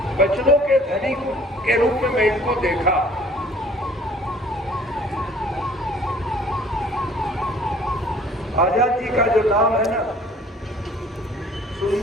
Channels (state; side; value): normal; both; correlation 0.53